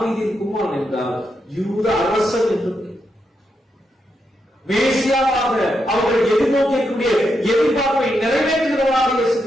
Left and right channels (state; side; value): normal; both; correlation 0.83